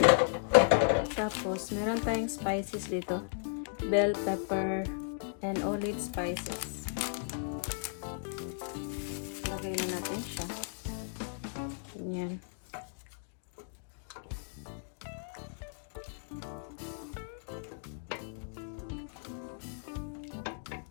Tapos, meron tayong spices dito. Bell pepper and olive spices. Lagay na natin siya. Yan.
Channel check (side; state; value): right; silent; digital silence